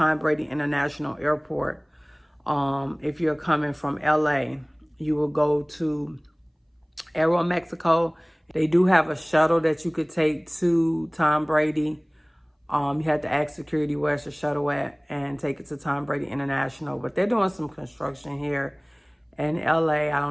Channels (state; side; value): identical; both; correlation 1.00